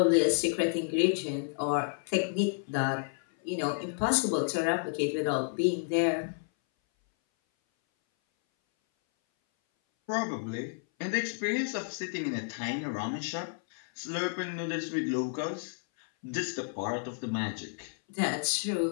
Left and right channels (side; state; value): right; silent; 57 dB below the other